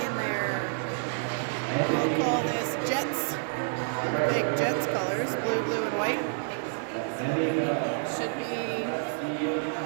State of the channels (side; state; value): left; silent; digital silence